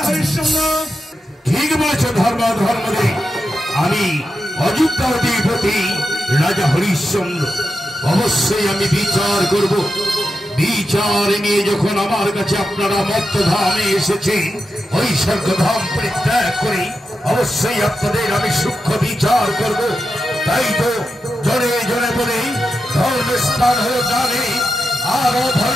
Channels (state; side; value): normal; both; correlation 0.89